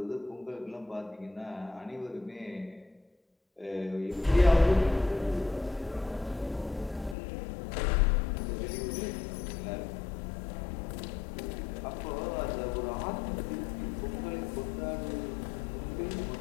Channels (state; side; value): drops out; right; at 7.2 s